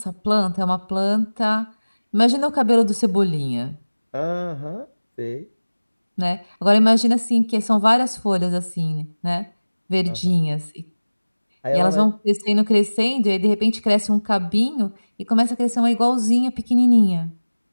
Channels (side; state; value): both; inverted; correlation -1.00